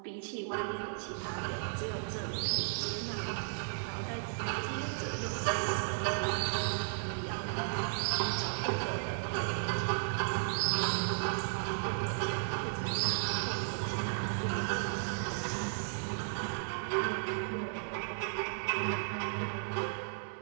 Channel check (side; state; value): left; silent; 55 dB below the other